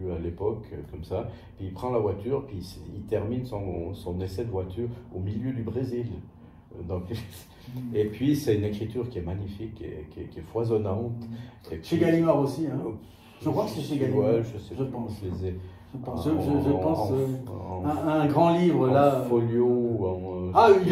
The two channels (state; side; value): identical; both; correlation 1.00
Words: à l'époque, comme ça. Puis il prend la voiture, puis il termine son essai de voiture au milieu du Brésil. Donc, et puis c'est une écriture qui est magnifique, qui est foisonnante. Chez Gallimard aussi, hein. Je crois que c'est chez Gallimard. Ouais, je pense. Je les ai. Je pense un grand livre là. Folio.